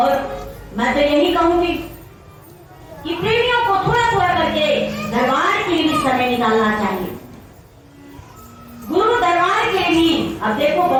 मैं तो यही कहूंगी कि प्रेमियों को थोड़ा थोड़ा करके दरबार के लिए समय निकालना चाहिए, गुरु दरबार के लिए। अब देखो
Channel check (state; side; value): identical; both; correlation 1.00